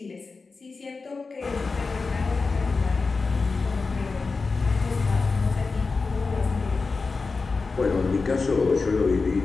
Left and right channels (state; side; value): quieter; right; 4.2 dB